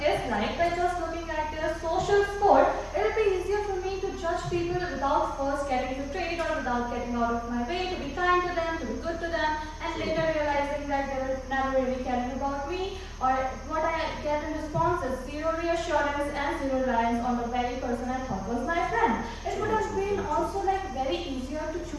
is like by just looking at their social score, it would be easier for me to judge people without first getting betrayed or without getting out of my way to be kind to them, to be good to them, and later realizing that they were never really caring about me, or what I get in response is zero reassurance and zero reliance on the very person I thought was my friend. It would have been also like very easier to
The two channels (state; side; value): identical; both; correlation 1.00